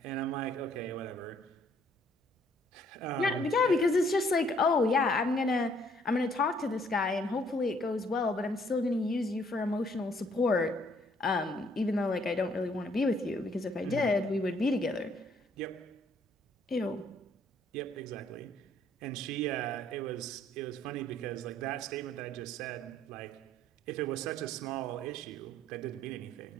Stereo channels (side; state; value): both; normal; correlation 0.64